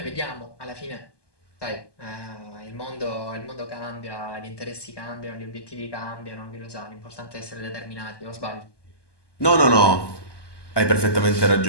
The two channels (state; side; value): late; right; 1.2 ms